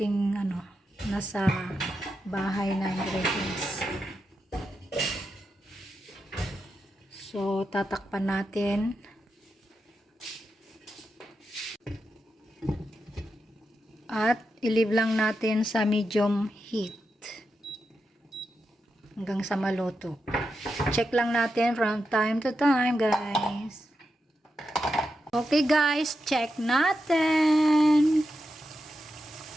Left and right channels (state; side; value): normal; both; correlation 0.87